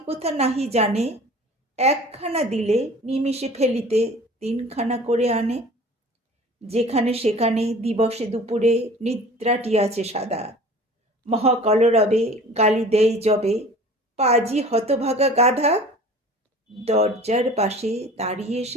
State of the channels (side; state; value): both; normal; correlation 0.44